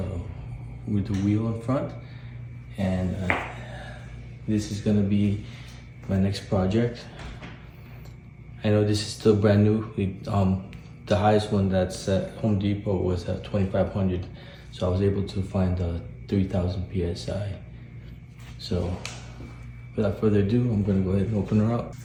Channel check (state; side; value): identical; both; correlation 1.00